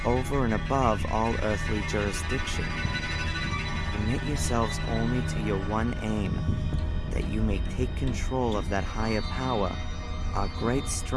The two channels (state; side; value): identical; both; correlation 1.00